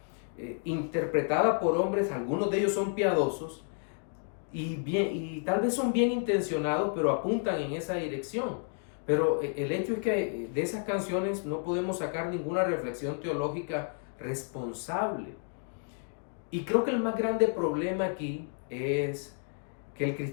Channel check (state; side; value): silent; right; 57 dB below the other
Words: interpretadas por hombres, algunos de ellos son piadosos y tal vez son bien intencionados, pero apuntan en esa dirección. Pero el hecho es que de esas canciones no podemos sacar ninguna reflexión teológica responsable. Y creo que el más grande problema aquí es que el